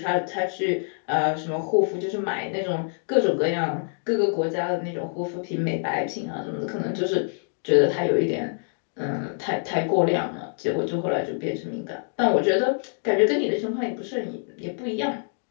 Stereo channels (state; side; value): silent; right; digital silence